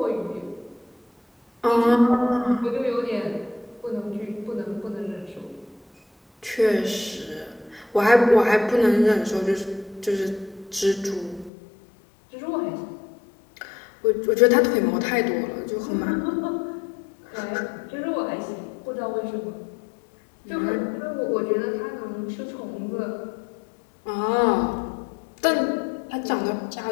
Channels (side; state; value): right; drops out; at 11.5 s